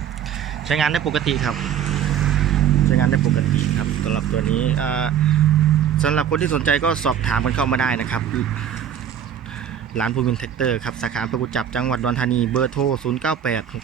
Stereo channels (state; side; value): quieter; left; 9.2 dB